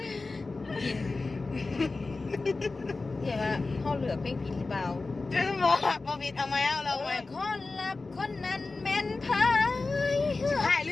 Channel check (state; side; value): quieter; right; 3.6 dB